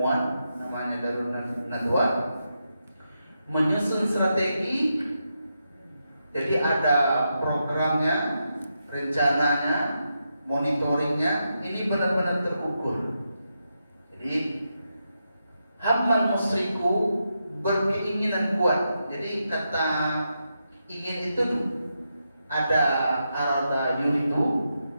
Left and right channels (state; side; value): inverted; both; correlation -0.85